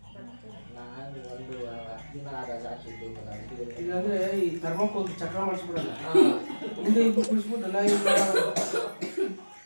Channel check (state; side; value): inverted; both; correlation -1.00